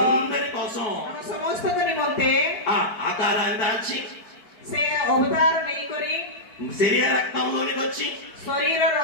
కోసం हम समस्त को निमंते ఆ ఆకారాన్ని దాల్చి से अवतार नहीं करी శరీర రక్తంలోనికి వచ్చి शरीर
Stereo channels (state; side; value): late; right; 4.6 ms